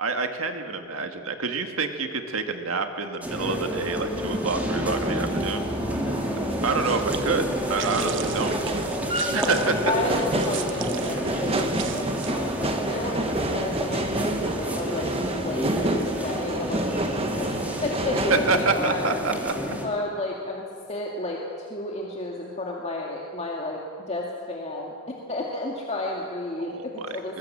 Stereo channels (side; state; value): both; normal; correlation 0.24